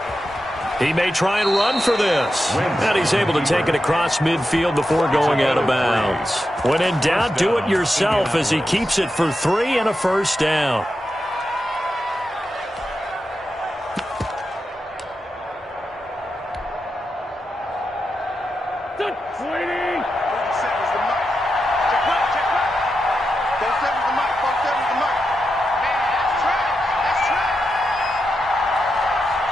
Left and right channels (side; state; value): both; normal; correlation 0.88